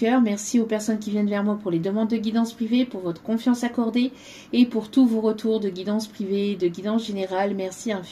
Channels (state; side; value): identical; both; correlation 1.00